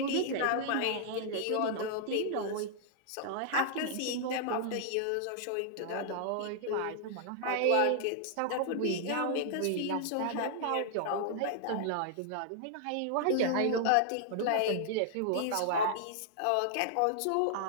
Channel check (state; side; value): different; both; correlation -0.01